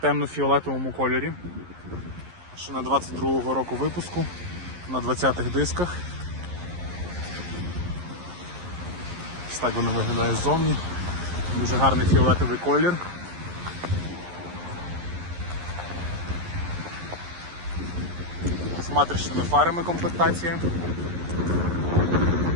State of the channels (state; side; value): late; left; 11 ms